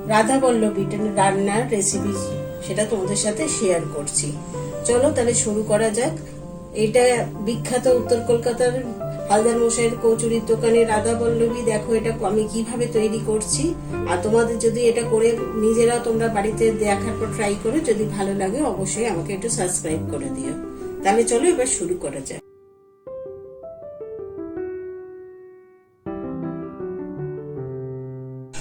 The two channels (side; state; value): both; identical; correlation 1.00